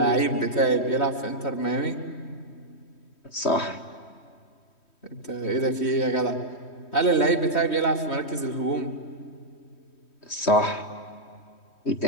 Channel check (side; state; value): right; late; 3.1 ms